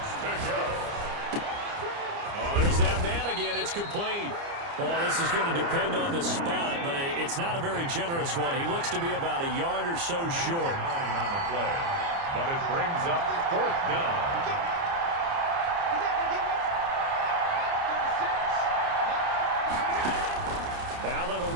to go. Oh, there's that man again. It's complete. Well, this is going to depend on the spot, but it's not a very generous one. He looks to be about a yard or so short. 9 on the play, but it brings up 4th down. Allen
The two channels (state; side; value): late; left; 29 ms